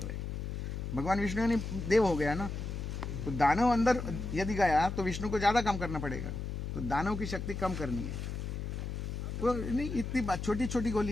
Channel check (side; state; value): left; noise; hum, 5 dB below the sound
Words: हैं। भगवान विष्णु ने देव हो गया ना, तो दानव अंदर यदि गया तो विष्णु को ज्यादा काम करना पड़ेगा, तो दानव की शक्ति कम करनी है। तो नहीं, इतनी बात, छोटी छोटी